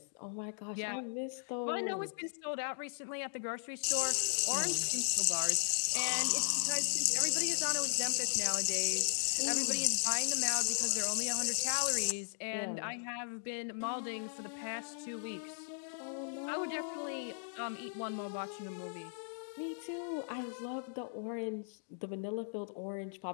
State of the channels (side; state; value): right; silent; digital silence